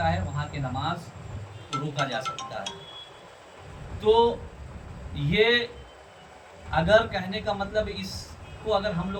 है, वहाँ के नमाज को रोका जा सकता है। तो ये अगर कहने का मतलब, इसको अगर हम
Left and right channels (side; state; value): both; identical; correlation 1.00